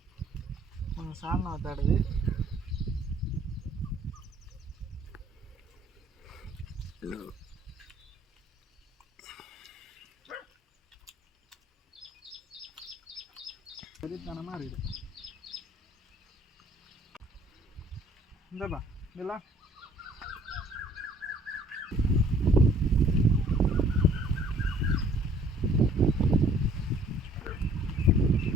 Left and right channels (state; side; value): normal; both; correlation 0.57